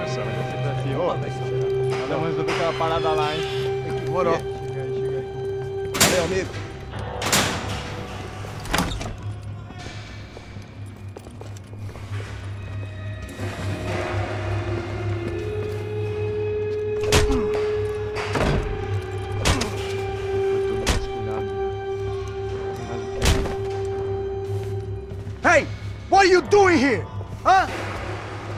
Ela resolveu aquela parada lá, hein? Demorou. Chega aí. Valeu, amigo.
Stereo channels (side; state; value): both; identical; correlation 1.00